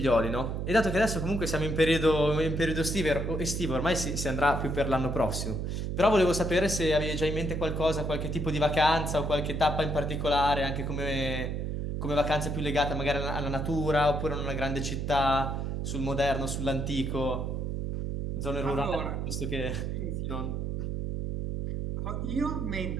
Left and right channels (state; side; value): noise; right; hum, 2 dB below the sound